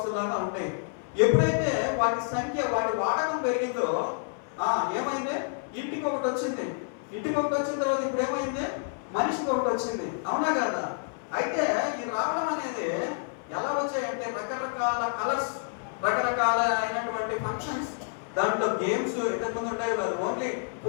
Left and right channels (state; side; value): silent; right; 57 dB below the other